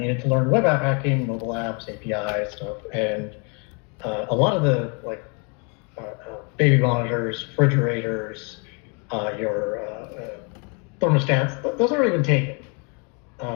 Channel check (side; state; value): right; quieter; 35.3 dB